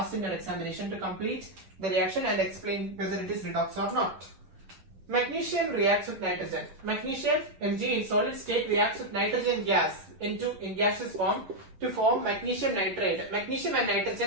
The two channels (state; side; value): late; left; 9.9 ms